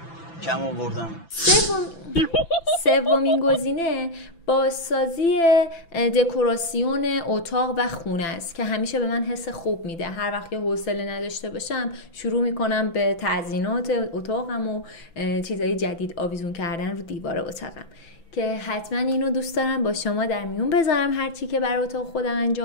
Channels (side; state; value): right; late; 6.0 ms